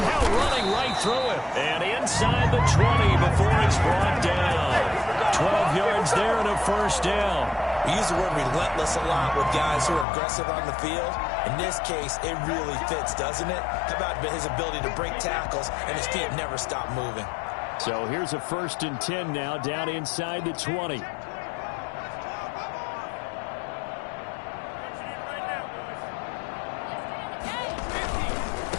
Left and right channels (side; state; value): right; drops out; at 10.1 s